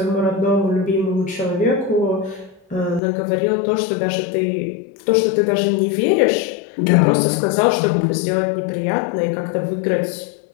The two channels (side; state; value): right; drops out; at 3.0 s